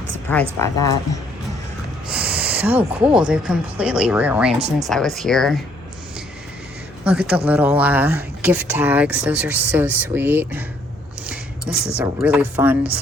surprised by that. So cool. They've completely rearranged since I was here. Look at the little gift tags. Those are so sweet. This is a really fun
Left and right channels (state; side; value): normal; both; correlation 0.66